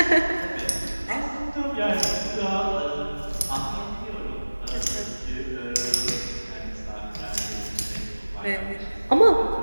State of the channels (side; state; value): both; inverted; correlation -1.00